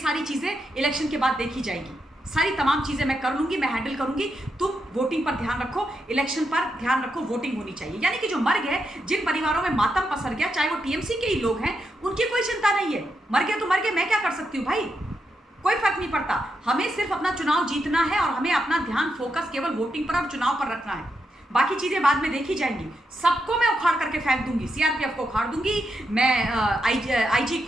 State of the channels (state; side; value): normal; both; correlation 0.83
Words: चीजें इलेक्शन के बाद देखी जाएगी, सारी तमाम चीजें मैं कर लूंगी, मैं हैंडल करूंगी। तुम वोटिंग पर ध्यान रखो, इलेक्शन पर ध्यान रखो, वोटिंग होनी चाहिए। यानी कि जो मर गए, जिन परिवारों में मातम पसर गया, चाहे वो टीएमसी के ही लोग हैं, उनकी कोई चिंता नहीं है। मर गए तो मर गए, मैं क्या कर सकती हूँ भाई, कोई फर्क नहीं पड़ता। हमें सिर्फ अपना चुनाव जीतना है और हमें अपना ध्यान फोकस केवल वोटिंग पर और चुनाव पर रखना है। बाकी चीजें बाद में देखी जाएंगी। सबको मैं उखाड़ करके फेंक दूंगी, सीआरपीएफ को उखाड़ दूंगी, मैं आईजी